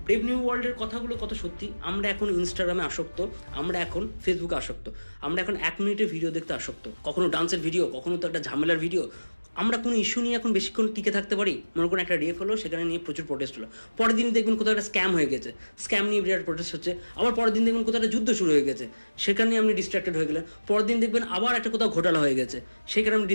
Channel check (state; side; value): inverted; both; correlation -1.00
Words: ব্রেভ নিউ ওয়ার্ল্ডের কথাগুলো কত সত্যি। আমরা এখন ইনস্টাগ্রামে আসক্ত, আমরা এখন ফেসবুকে আসক্ত, আমরা এখন 1 মিনিটের ভিডিও দেখতে আসক্ত, কখনো ডান্সের ভিডিও, কখনো তো একটা ঝামেলার ভিডিও। আমরা কোনো ইস্যু নিয়ে এখন বেশিক্ষণ টিকে থাকতে পারি? মনে করুন একটা রেপ হলো, সেখানে নিয়ে প্রচুর প্রোটেস্ট হলো, পরের দিন দেখবেন কোথাও একটা স্ক্যাম হয়ে গেছে, স্ক্যাম নিয়ে বিরাট প্রোটেস্ট হচ্ছে, আবার পরের দিন দেখবেন কোথাও একটা যুদ্ধ শুরু হয়ে গেছে, সেখানে আপনি ডিস্ট্র্যাক্টেড হয়ে গেলেন, পরের দিন দেখবেন আবার একটা কোথাও ঘোটালা হয়ে গেছে, সেখানে আপনি